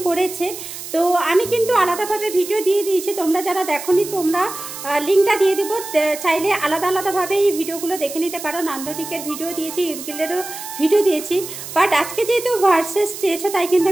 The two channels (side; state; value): right; noise; hiss, 10 dB below the sound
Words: করেছে। তো আমি কিন্তু আলাদাভাবে ভিডিও দিয়ে দিয়েছি, তোমরা যারা দেখোনি তোমরা লিঙ্কটা দিয়ে দেবো, চাইলে আলাদা আলাদাভাবে এই ভিডিওগুলো দেখে নিতে পারো। নান্দনিকের ভিডিও দিয়েছি, ঈদগিলেরও ভিডিও দিয়েছি, বাট আজকে যেহেতু ভার্সেস চেয়েছো তাই কিন্তু